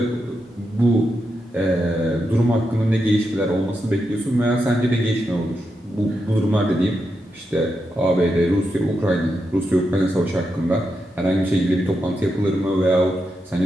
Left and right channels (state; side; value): normal; both; correlation 0.86